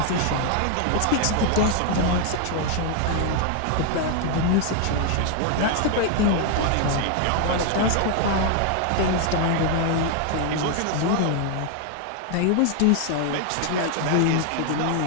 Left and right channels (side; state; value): both; different; correlation 0.00